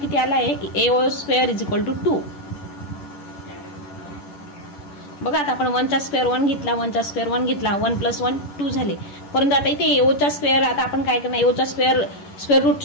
आला आहे, AO square is equal to 2. बघा आता आपण 1 चा स्क्वेअर 1 घेतला, 1 चा स्क्वेअर 1 घेतला, 1 प्लस 1 2 झाले. परंतु आता इथे AO चा स्क्वेअर, आता आपण काय करणार, AO चा स्क्वेअर रूट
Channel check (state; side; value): late; right; 11 ms